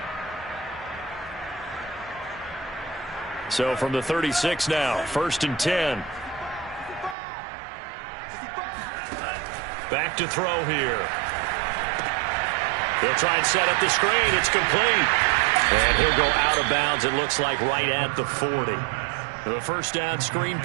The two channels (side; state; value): left; drops out; at 7.2 s